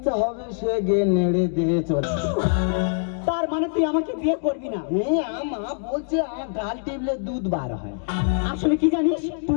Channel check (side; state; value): right; silent; digital silence